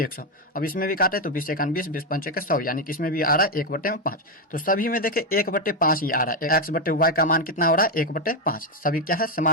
अब इसमें भी काटे तो 20 एकान 20, 20 पंचे के 100, यानी कि इसमें भी आ रहा है 1 बटे में 5। तो सभी में देखे 1 बटे 5 ही आ रहा है। x बटे y का मान कितना हो रहा है, 1 1/5 सभी क्या है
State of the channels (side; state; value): both; normal; correlation 0.06